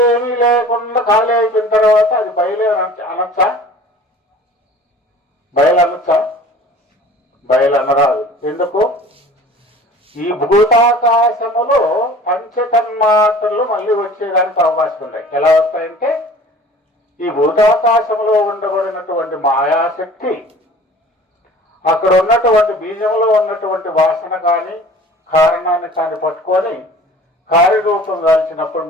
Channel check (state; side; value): normal; both; correlation 0.45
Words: లేకుండా ఖాళీ అయిపోయిన తర్వాత అది బయలు అనొచ్చా? బయలు అనొచ్చా? బయలు అనరాదు. ఎందుకు? ఈ భూతాకాశములో పంచతన్మాత్రలు మళ్ళీ వచ్చేదానికి అవకాశం ఉన్నాయి. ఎలా వస్తాయంటే, ఈ భూతాకాశంలో ఉండబడినటువంటి మాయాశక్తి అక్కడ ఉన్నటువంటి బీజంలో ఉన్నటువంటి వాసన కానీ కారణాన్ని కానీ పట్టుకొని కార్యరూపం దాల్చినప్పుడు